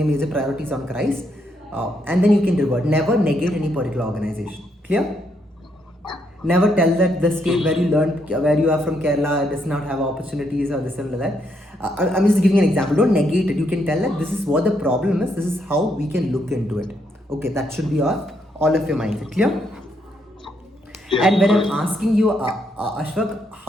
priority is on Christ. And then you can revert. Never negate any particular organization. Clear? Never tell that the state where you learned, where you are from Kerala, does not have opportunities or this and that. I'm just giving an example. Don't negate it. You can tell that this is what the problem is. This is how we can look into it. Okay, that should be all of your mindset. Clear? Yeah, And when I'm got it. asking you, Ashfaq,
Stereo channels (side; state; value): both; normal; correlation 0.76